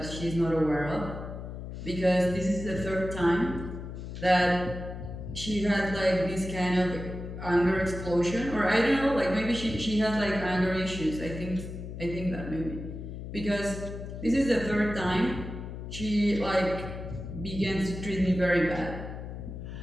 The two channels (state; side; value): noise; left; hum, 9 dB below the sound